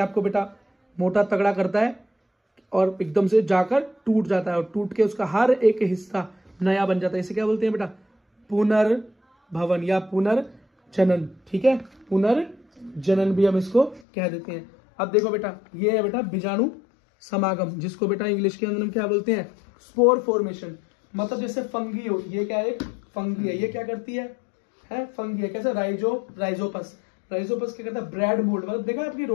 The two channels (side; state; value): right; drops out; at 14.0 s